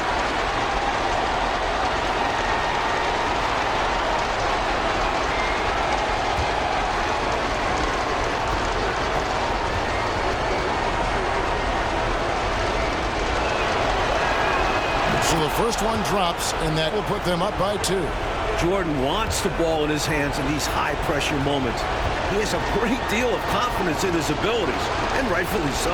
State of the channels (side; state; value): both; identical; correlation 1.00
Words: So the first one drops, and that will put them up by 2. Jordan wants the ball in his hands in these high-pressure moments. He has a great deal of confidence in his abilities, and rightfully